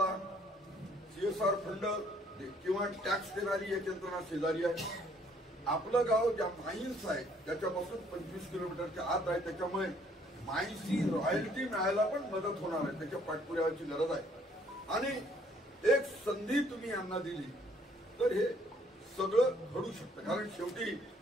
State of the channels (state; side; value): normal; both; correlation 0.63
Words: CSR फंड किंवा टॅक्स देणारी एक यंत्रणा शेजारी आहे। आपलं गाव ज्या माईन्स आहे त्याच्यापासून 25 किलोमीटरच्या आत आहे, त्याच्यामुळे माईन्सची रॉयल्टी मिळायला पण मदत होणार आहे, त्याच्या पाठपुराव्याची गरज आहे। आणि एक संधी तुम्ही यांना दिली तर हे सगळं घडू शकतं, कारण शेवटी